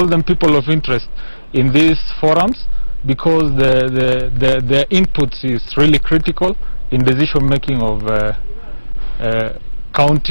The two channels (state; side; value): inverted; both; correlation -1.00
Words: them people of interest, in these forums, because the inputs is really critical in decision making of